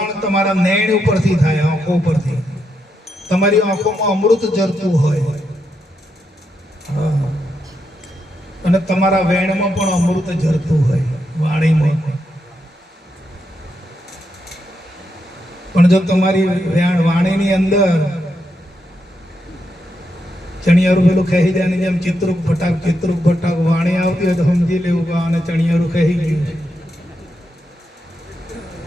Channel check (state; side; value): normal; both; correlation 0.83